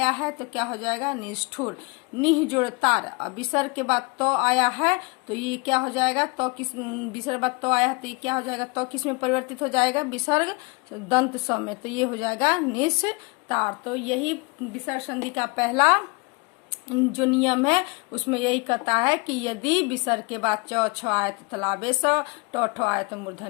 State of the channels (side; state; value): right; quieter; 29.6 dB